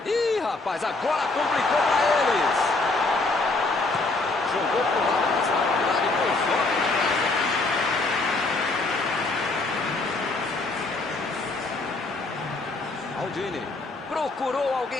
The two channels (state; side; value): quieter; right; 3.3 dB